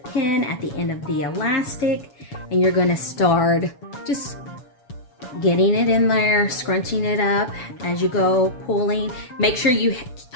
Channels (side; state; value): right; late; 7.1 ms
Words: at the end of the elastic, and you're going to start just getting it in there, scrunching it up as you go, pulling. Make sure you